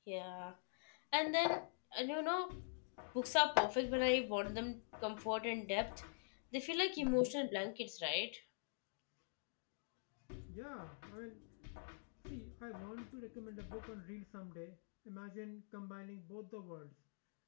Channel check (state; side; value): silent; right; digital silence